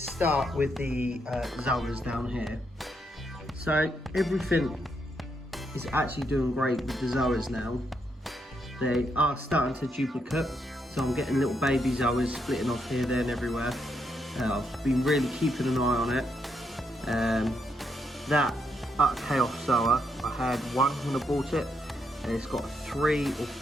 with the zoas down here, so everything is actually doing great with the zoas now. They are starting to duplicate, so I'm getting little baby zoas splitting off here, there and everywhere. I've been really keeping an eye on it. That chaos zoa, I had one when I bought it, and it's got 3 or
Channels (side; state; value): both; normal; correlation 0.78